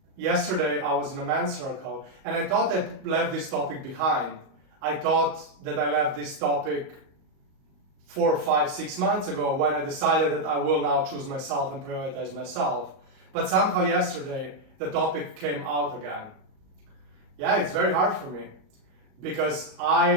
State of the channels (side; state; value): left; late; 38 ms